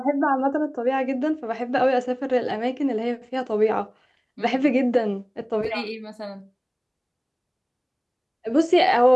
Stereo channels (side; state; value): both; identical; correlation 1.00